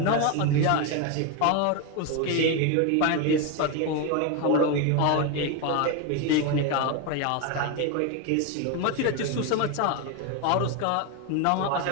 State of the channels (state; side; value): different; both; correlation 0.02